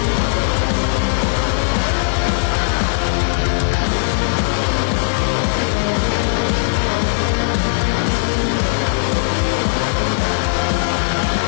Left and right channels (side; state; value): right; silent; digital silence